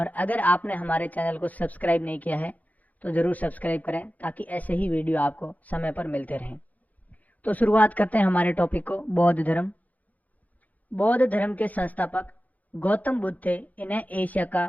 अगर आपने हमारे चैनल को सब्सक्राइब नहीं किया है तो ज़रूर सब्सक्राइब करें ताकि ऐसे ही वीडियो आपको समय पर मिलते रहें। तो शुरुआत करते हैं हमारे टॉपिक को। बौद्ध धर्म। बौद्ध धर्म के संस्थापक गौतम बुद्ध थे। इन्हें एशिया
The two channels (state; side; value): late; right; 0.077 ms